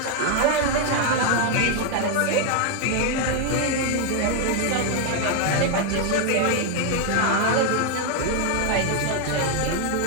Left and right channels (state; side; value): different; both; correlation 0.00